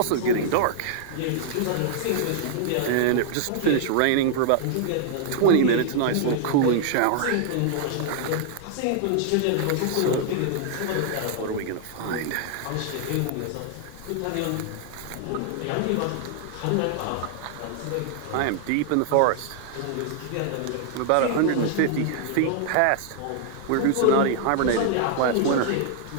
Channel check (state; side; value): different; both; correlation -0.01